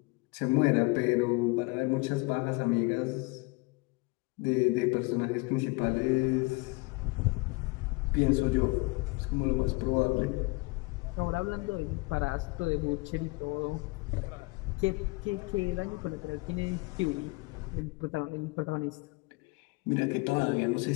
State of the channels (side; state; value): right; quieter; 26.4 dB